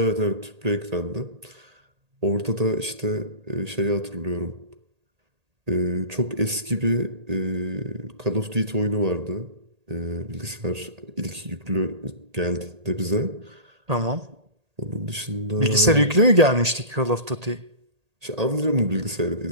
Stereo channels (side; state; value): left; late; 1.8 ms